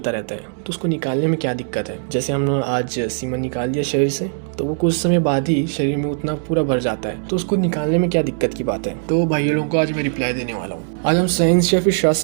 रहता है, तो उसको निकालने में क्या दिक्कत है। जैसे हमने आज सीमन निकाल दिया शरीर से, तो वो कुछ समय बाद ही शरीर में उतना पूरा भर जाता है, तो उसको निकालने में क्या दिक्कत की बात है। तो भाइयों लोगों को आज मैं रिप्लाई देने वाला हूँ। आज हम साइंस या फिर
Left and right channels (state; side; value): silent; left; digital silence